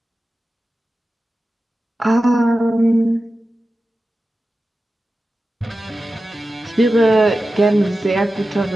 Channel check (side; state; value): both; normal; correlation 0.93